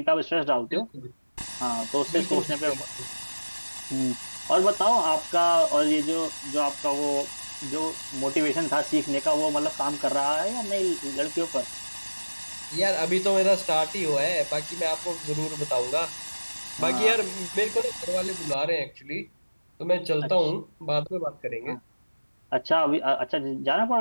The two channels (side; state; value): both; inverted; correlation -1.00